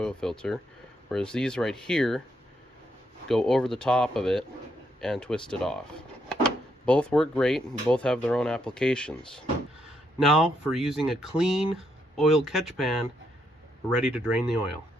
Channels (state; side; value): normal; both; correlation 0.77